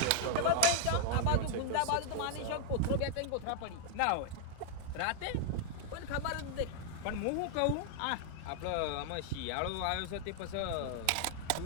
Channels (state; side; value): different; both; correlation 0.00